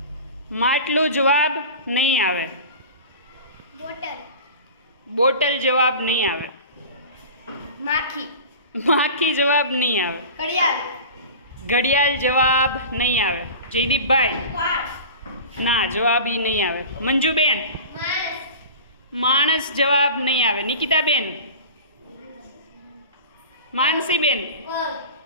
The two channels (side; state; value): both; inverted; correlation -0.35